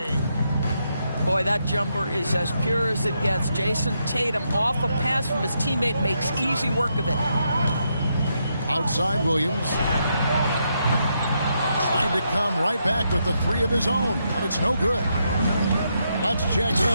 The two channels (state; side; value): inverted; both; correlation -0.80